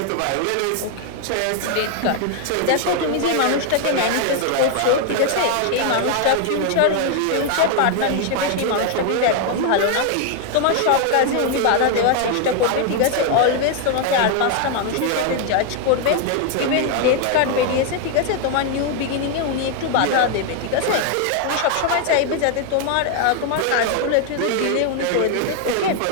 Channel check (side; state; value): both; different; correlation 0.00